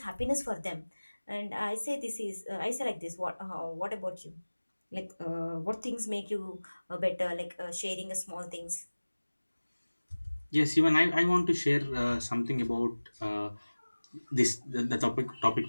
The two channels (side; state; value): both; inverted; correlation -1.00